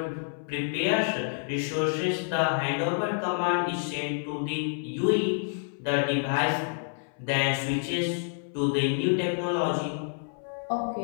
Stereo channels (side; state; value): right; silent; 59 dB below the other